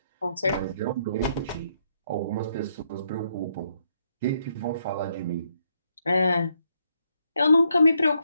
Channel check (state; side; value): inverted; both; correlation -0.75